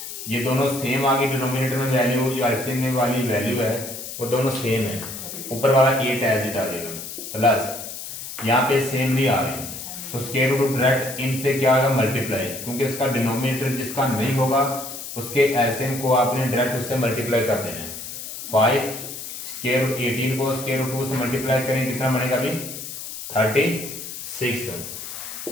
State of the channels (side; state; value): left; noise; hiss, 9 dB below the sound